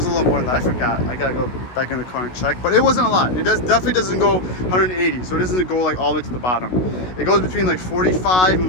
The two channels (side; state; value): right; late; 16 ms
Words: a little more than that. I forgot. I gotta go back in the car and check. But it wasn't a lot. It definitely doesn't go 180. So it doesn't go like all the way to the bottom. It goes between like 45 and